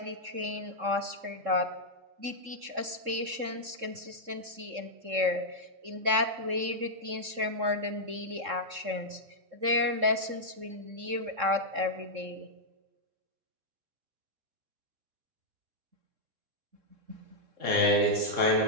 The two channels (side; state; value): left; late; 3.7 ms